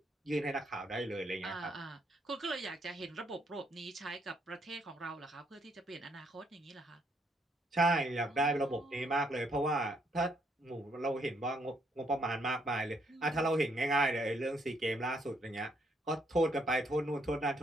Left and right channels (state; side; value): normal; both; correlation 0.72